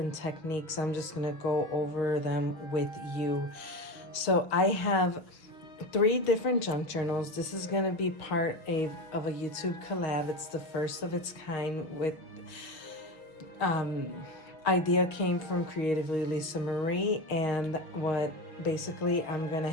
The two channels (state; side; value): late; right; 6.0 ms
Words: techniques. I'm just going to go over them with you. So I have 3 different junk journals. This is going to be part of a YouTube collab. It's the first of its kind with idea came from Creatively Lisa Marie, and what basically I'm going to